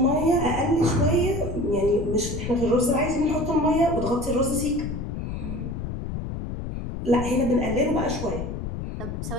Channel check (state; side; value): noise; left; rumble, 6 dB below the sound